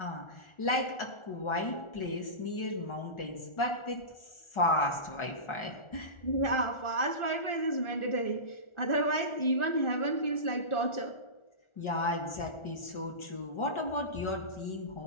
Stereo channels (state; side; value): late; right; 1.4 ms